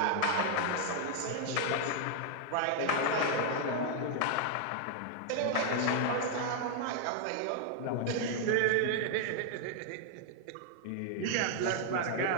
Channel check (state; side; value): different; both; correlation 0.00